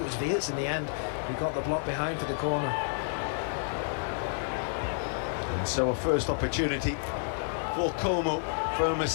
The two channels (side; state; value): right; silent; digital silence